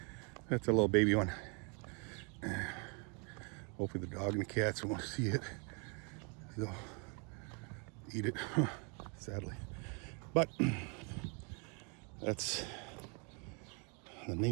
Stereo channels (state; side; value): quieter; left; 34.9 dB